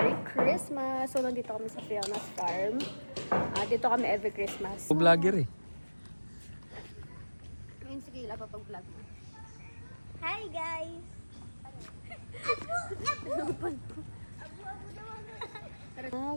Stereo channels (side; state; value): both; inverted; correlation -1.00